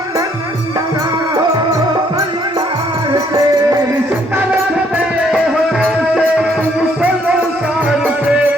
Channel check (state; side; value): normal; both; correlation 0.67